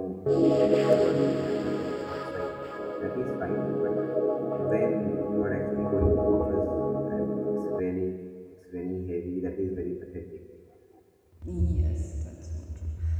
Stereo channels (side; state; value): both; identical; correlation 1.00